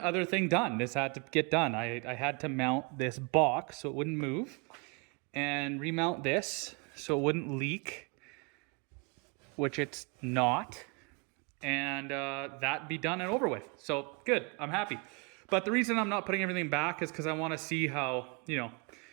thing done. This had to get done. I had to mount this box so it wouldn't move and remount this so it wouldn't leak, which it's not, and that be done and over with. So good, I'm happy. But the reason I'm not putting everything back is because I want to see how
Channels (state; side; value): quieter; left; 32.2 dB